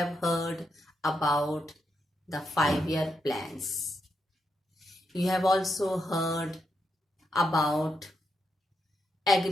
heard about the 5-year plans. You have also heard about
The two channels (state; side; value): normal; both; correlation 0.83